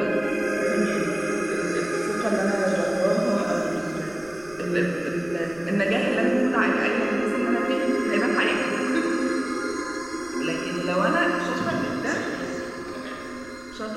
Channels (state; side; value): noise; right; rumble, 23 dB below the sound